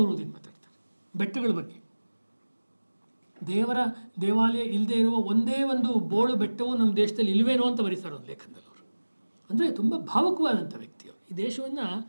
ಮಾತಾಡ್ತಾರೆ. ಬೆಟ್ಟಗಳ ಬಗ್ಗೆ, ದೇವಾಲಯ ಇಲ್ಲದೆ ಇರುವ ಒಂದೇ ಒಂದು ಬೋಳು ಬೆಟ್ಟವು ನಮ್ಮ ದೇಶದಲ್ಲಿ ಇಲ್ವೇನೋ ಅಂತ ಬರೀತಾರೆ ಒಂದು ಲೇಖನದಲ್ಲಿ ಅವರು. ಅಂದರೆ ತುಂಬ ಭಾವುಕವಾದಂಥ ವ್ಯಕ್ತಿಯವರು. ಈ ದೇಶವನ್ನು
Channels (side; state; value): both; inverted; correlation -1.00